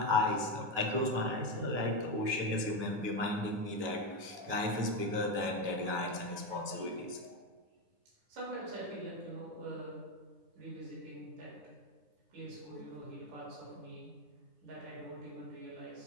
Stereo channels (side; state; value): left; late; 9.3 ms